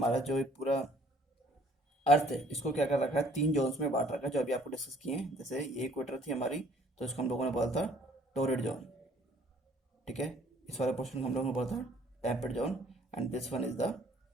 जो पूरा अर्थ है इसको क्या कर रखा है, 3 जोन्स में बांट रखा है, जो अभी आपको डिस्कस किए हैं। जैसे ये इक्वेटर थी हमारी, तो इसको हम लोगों ने बोला था टॉरिड जोन, ठीक है। इस वाले पोर्शन को हम लोगों ने बोला था temperate zone, and this one is the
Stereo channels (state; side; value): normal; both; correlation 0.59